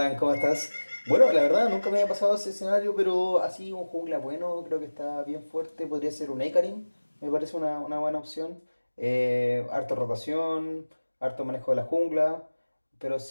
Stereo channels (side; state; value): both; inverted; correlation -1.00